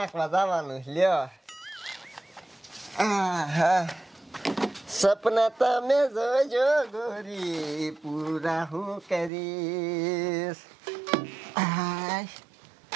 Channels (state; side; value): drops out; left; at 9.3 s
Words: જવાનું લ્યો. સપના તમે જોજો ગોરી, પૂરા હું કરીશ.